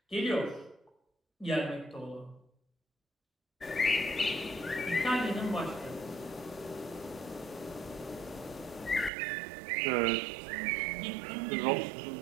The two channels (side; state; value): left; drops out; at 9.1 s